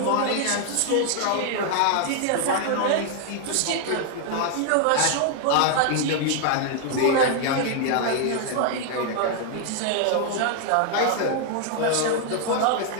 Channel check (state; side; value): different; both; correlation 0.00